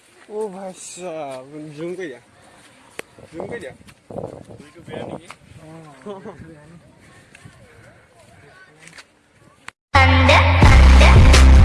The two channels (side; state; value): both; identical; correlation 1.00